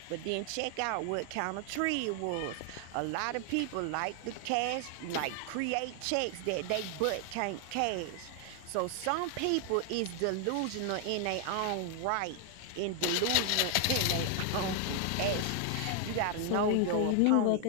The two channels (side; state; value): both; different; correlation 0.00